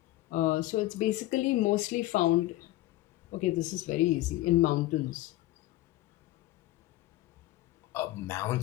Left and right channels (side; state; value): right; quieter; 16.8 dB